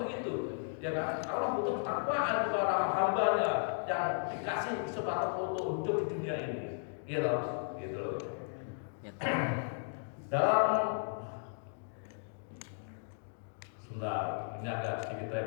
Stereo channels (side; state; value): right; silent; digital silence